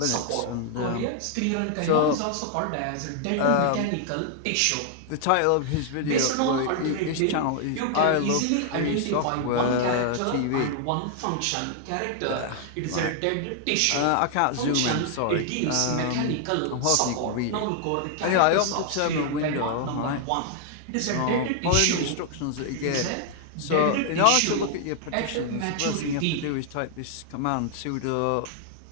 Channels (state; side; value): different; both; correlation 0.00